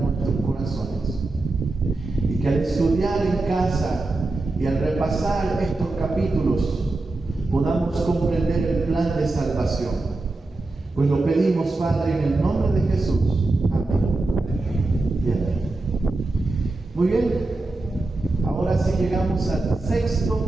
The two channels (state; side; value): quieter; left; 3.1 dB